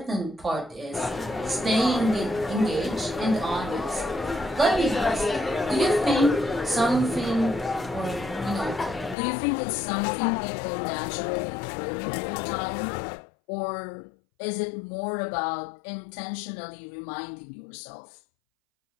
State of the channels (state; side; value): drops out; right; at 9.2 s